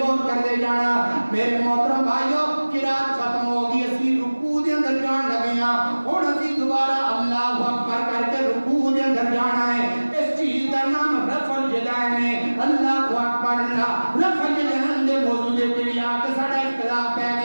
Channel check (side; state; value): both; inverted; correlation -1.00